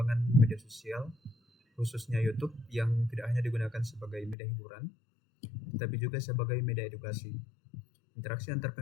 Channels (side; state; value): right; drops out; at 4.4 s